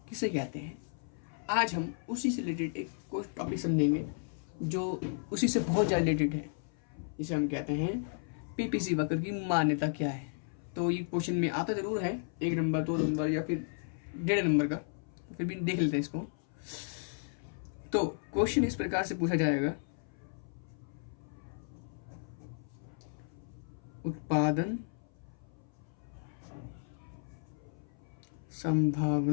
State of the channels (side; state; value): right; silent; 55 dB below the other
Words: किसे कहते हैं। आज हम उसी से रिलेटेड एक कोई टॉपिक समझेंगे जो उसी से बहुत ज़्यादा रिलेटेड है, जिसे हम कहते हैं पीपीसी वाक्य की मान्यता क्या है। तो ये क्वेश्चन में आता ज़रूर है 1 नंबर 2 नंबर या फिर 1.5 नंबर का, फिर भी देख लेते हैं इसको। तो क्वेश्चन इस प्रकार से पूछा जाएगा, उत्पादन